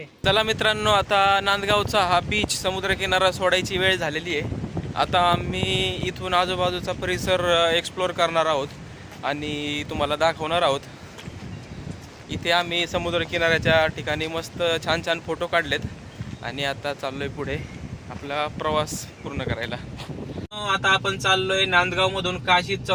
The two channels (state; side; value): identical; both; correlation 1.00